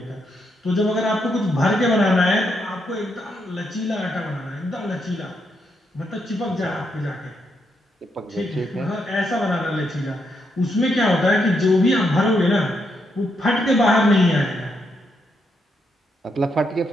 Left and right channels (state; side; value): normal; both; correlation 0.79